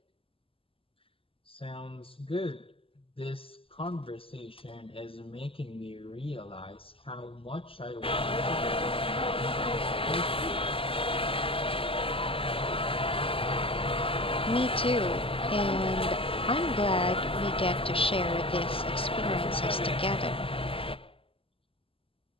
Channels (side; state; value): right; late; 0.26 ms